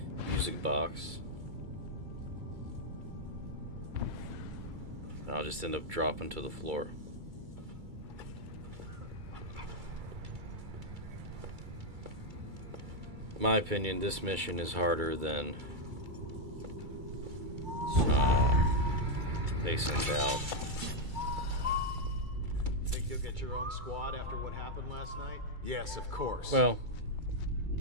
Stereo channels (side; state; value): left; late; 2.3 ms